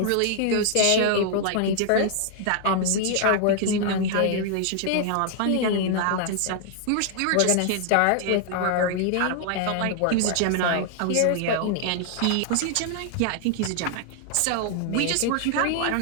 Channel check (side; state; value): both; different; correlation 0.00